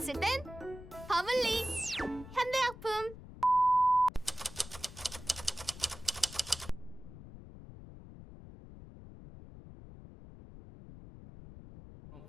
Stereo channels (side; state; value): left; noise; rumble, 15 dB below the sound